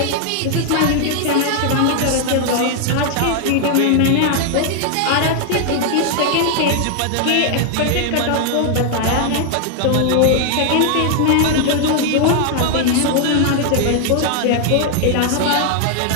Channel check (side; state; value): both; different; correlation 0.00